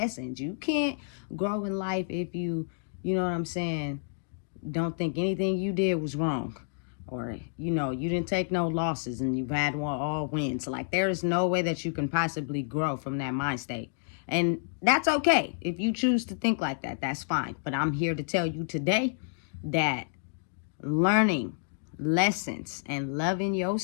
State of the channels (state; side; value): silent; right; digital silence